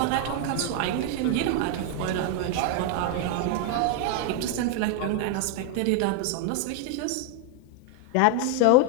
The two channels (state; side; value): different; both; correlation 0.00